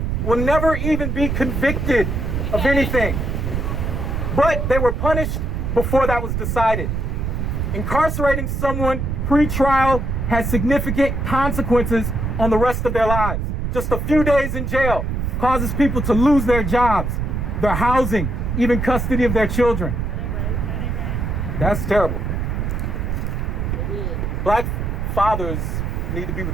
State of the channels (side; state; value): right; noise; rumble, 1 dB below the sound